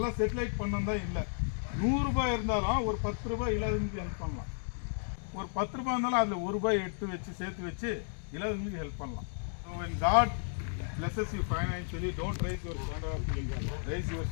செட்டிலைட் பண்ணதான் இல்லை. 100 ரூபாய் இருந்தாலும் ஒரு 10 ரூபாய் இல்லாதவங்களுக்கு ஹெல்ப் பண்ணலாம். ஒரு 10 ரூபாய் இருந்தாலும் அதில் 1 ரூபாய் சேர்த்து வச்சு இல்லாதவங்களுக்கு ஹெல்ப் பண்ணலாம். So when God blesses you financially, don't raise your standard of living. Raise your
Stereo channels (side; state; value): right; silent; digital silence